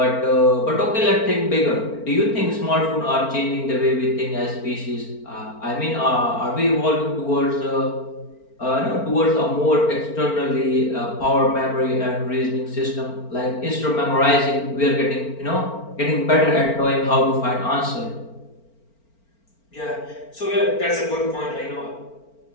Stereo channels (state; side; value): late; right; 4.4 ms